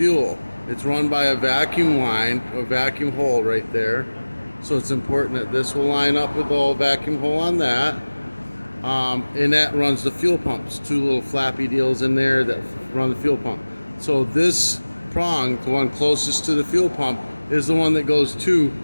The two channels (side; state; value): both; inverted; correlation -1.00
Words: It's run by a vacuum line, a vacuum hole right there. So it's important that this will line up with the whole vacuum hole on that. And that runs the fuel pumps. 2 little flappy deals in there that run the fuel pump. So this prong, the one closest to the fuel pump, is the one that goes to